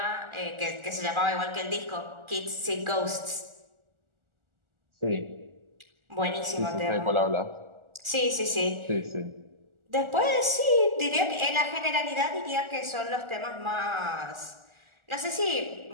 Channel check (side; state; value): left; late; 1.4 ms